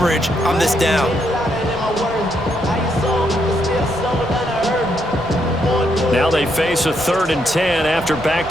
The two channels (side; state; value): both; normal; correlation 0.77